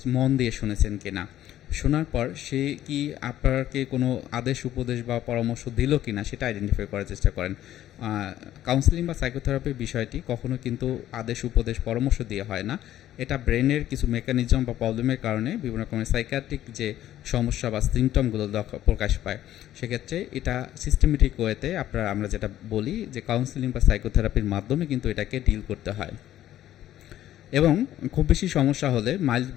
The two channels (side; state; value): right; quieter; 12.8 dB